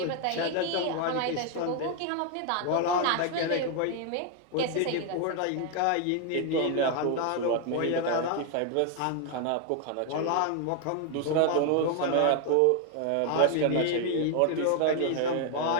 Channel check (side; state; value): both; different; correlation 0.01